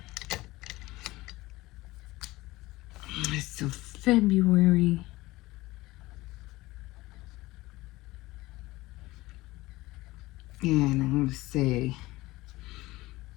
So February. And I'm going to say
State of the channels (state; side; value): quieter; right; 19.4 dB